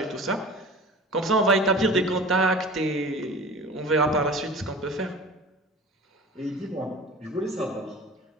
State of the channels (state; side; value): normal; both; correlation 0.38